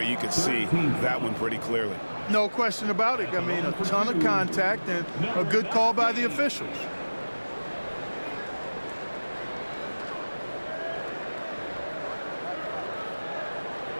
you can see that one pretty clearly. No question about it. I mean, a ton of contact and a good call by the officials.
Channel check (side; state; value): both; inverted; correlation -1.00